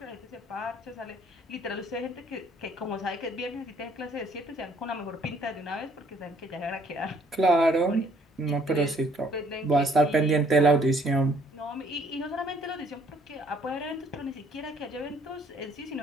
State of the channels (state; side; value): normal; both; correlation 0.62